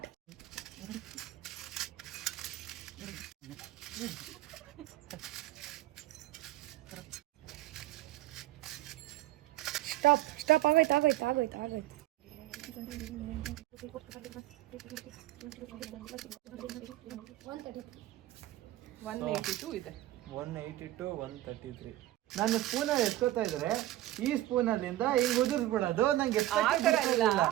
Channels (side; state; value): left; quieter; 15.4 dB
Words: ಸ್ಟಾಪ್ ಆಗೋಯ್ತು. 182 ಇದೆ. 182 133. ನಾನು ಸ್ಪೂನಲ್ಲಿ ಎತ್ಕೋತಾ ಇದ್ರೆ ಈ ಸ್ಪೂನಲ್ಲಿಂದ ಹಿಂಗ್ ಉದುರಿಸ್ಬಿಡೋದು ನಂಗೆ